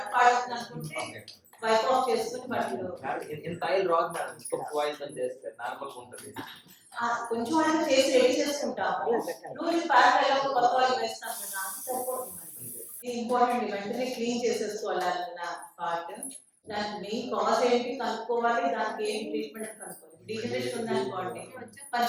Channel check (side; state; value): both; identical; correlation 1.00